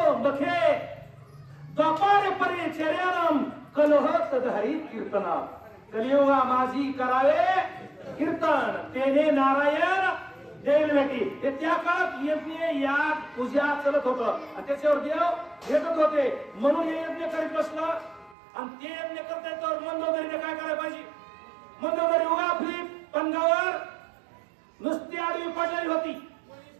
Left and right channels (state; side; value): drops out; left; at 18.4 s